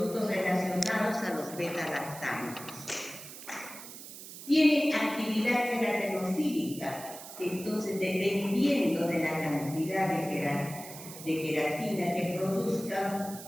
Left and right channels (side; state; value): right; noise; hiss, 13 dB below the sound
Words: relacionados a los beta-lactámicos. Tienen actividad queratinofílica, entonces dependiendo de la cantidad de queratina que produzcan,